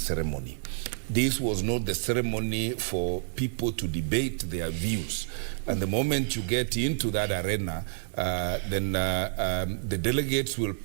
This was not the ceremony for people to debate their views. And the moment you get into that arena, then the delegates will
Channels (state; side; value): silent; left; digital silence